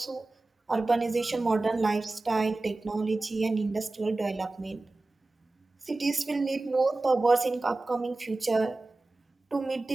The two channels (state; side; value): quieter; left; 3.1 dB